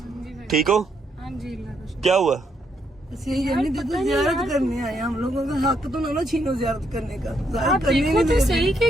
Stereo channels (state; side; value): normal; both; correlation 0.75